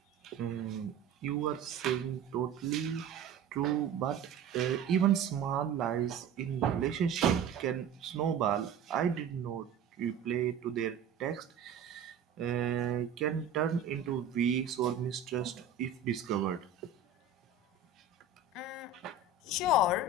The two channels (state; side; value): quieter; left; 5.3 dB